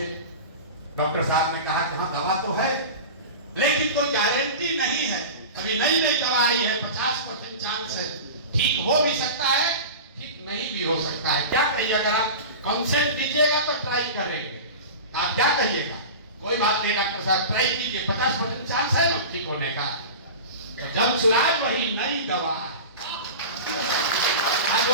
डॉक्टर साहब ने कहा कि हाँ दवा तो है, लेकिन कोई गारंटी नहीं है, अभी नई नई दवा आई है, 50% चांस है, ठीक हो भी सकता है, ठीक नहीं भी हो सकता है। क्या कहिए, अगर आप कंसेंट दीजिएगा तो ट्राई करेंगे, आप क्या कहिएगा? कोई बात नहीं डॉक्टर साहब, ट्राई कीजिए, 50% चांस है ना ठीक होने का। तो जब सुनाज वही नई दवा है, आज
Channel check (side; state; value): both; inverted; correlation -0.30